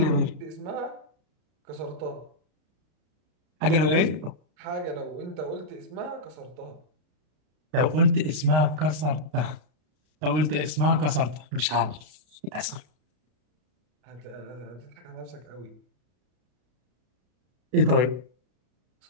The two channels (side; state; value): left; late; 33 ms